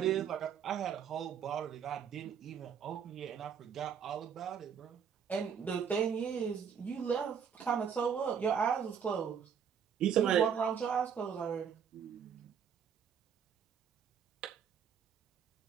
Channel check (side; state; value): left; quieter; 7.6 dB